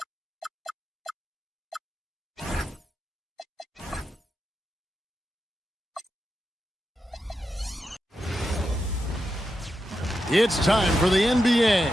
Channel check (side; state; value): both; normal; correlation 0.88